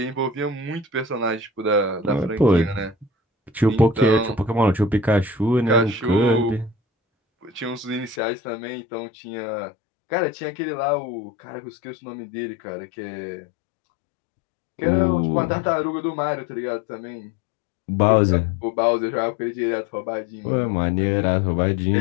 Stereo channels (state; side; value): drops out; right; at 8.2 s